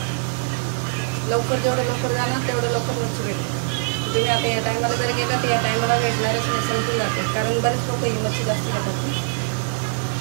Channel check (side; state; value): left; silent; 60 dB below the other